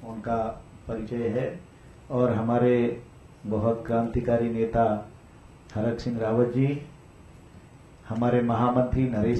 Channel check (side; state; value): both; identical; correlation 1.00